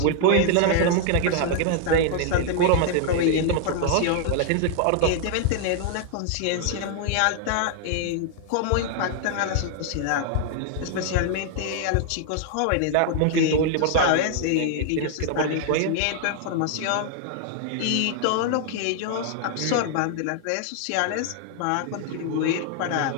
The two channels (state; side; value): different; both; correlation 0.00